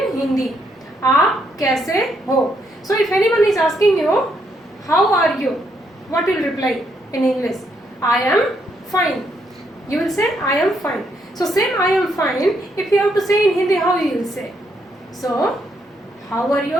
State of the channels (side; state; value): both; normal; correlation 0.75